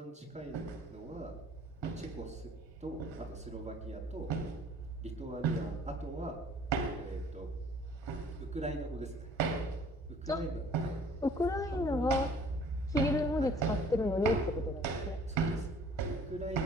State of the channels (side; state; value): both; normal; correlation 0.54